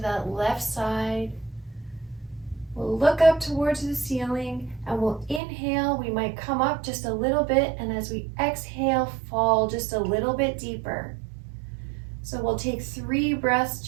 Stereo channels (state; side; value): drops out; left; at 5.4 s